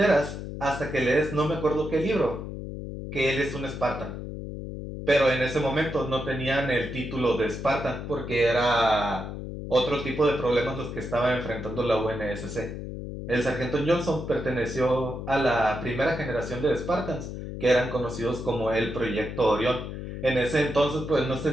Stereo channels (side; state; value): left; noise; hum, 8 dB below the sound